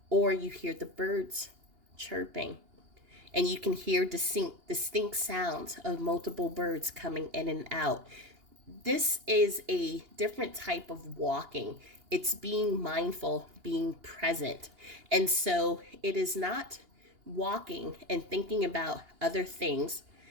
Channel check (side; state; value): left; late; 2.8 ms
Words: or you hear the birds chirping, and you can hear distinct sounds of multiple birds coming in and out. This is a different type of walking. It's being mindful, being present. And so it is not walking and thinking about other things